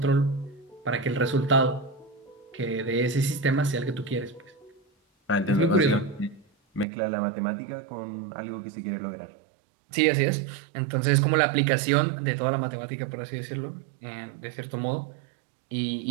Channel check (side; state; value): left; drops out; at 6.9 s